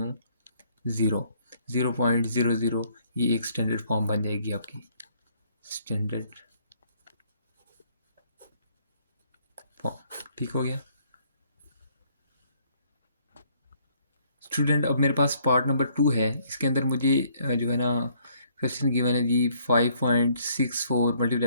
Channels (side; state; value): both; inverted; correlation -0.65